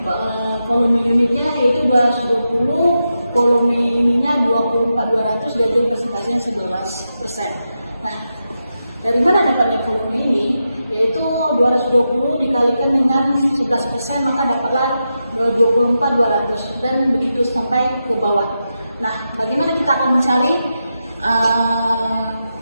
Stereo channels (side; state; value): both; inverted; correlation -0.88